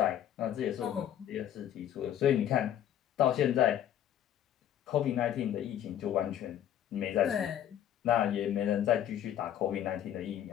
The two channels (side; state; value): right; quieter; 10.8 dB